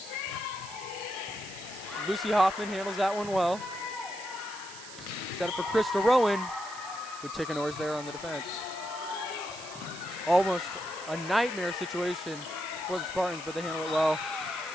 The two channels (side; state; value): right; noise; hiss, 14 dB below the sound